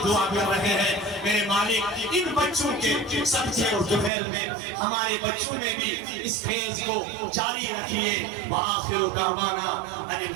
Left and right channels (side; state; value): left; drops out; at 4.1 s